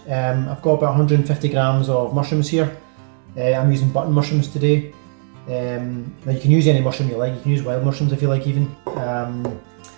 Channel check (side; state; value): left; silent; digital silence